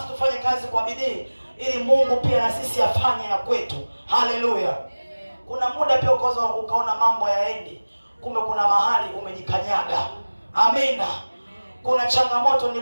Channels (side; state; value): both; inverted; correlation -1.00